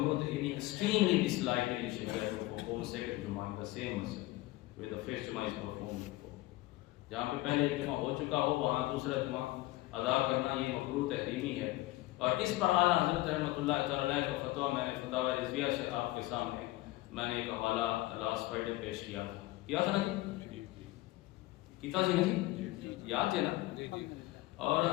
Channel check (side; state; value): right; quieter; 18.5 dB